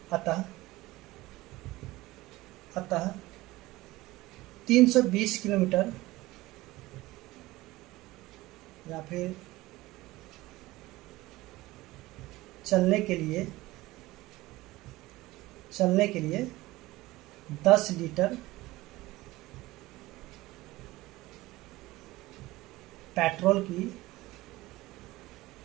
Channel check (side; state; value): left; quieter; 18.8 dB